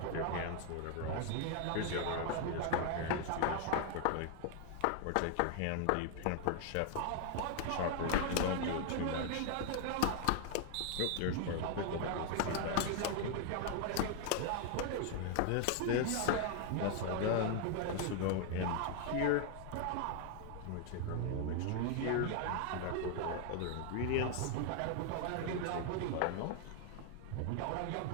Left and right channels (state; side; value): different; both; correlation 0.00